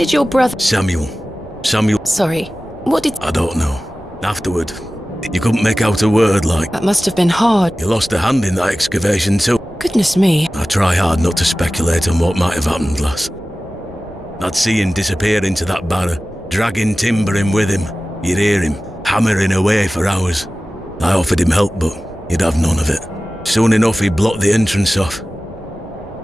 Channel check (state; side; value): normal; both; correlation 0.96